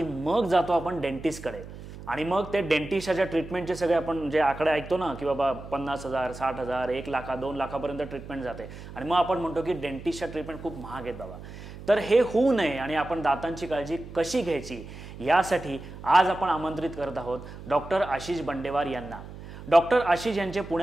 मग जातो आपण डेंटिस्टकडे. आणि मग ते डेंटिस्टच्या ट्रीटमेंटचे सगळे आपण जे आकडे ऐकतो ना, की बाबा 50,000, 60,000, 1 लाख, 2 लाखापर्यंत ट्रीटमेंट जाते. आणि मग आपण म्हणतो की डेंटिस्टच्या ट्रीटमेंट खूप महाग आहेत बाबा. तर हे होऊ नये आणि आपण दातांची काळजी कशी घ्यायची यासाठी आज आपण आमंत्रित करत आहोत डॉक्टर आशिष बंडेवार यांना. डॉक्टर आशिष यांचे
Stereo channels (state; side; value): noise; right; hum, 14 dB below the sound